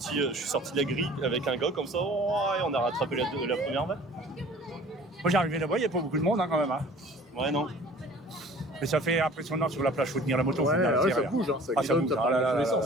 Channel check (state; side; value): normal; both; correlation 0.48